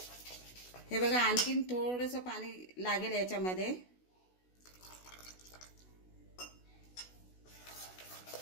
हे बघा आणखीन थोडंसं पाणी लागेल याच्यामध्ये.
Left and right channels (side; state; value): right; late; 16 ms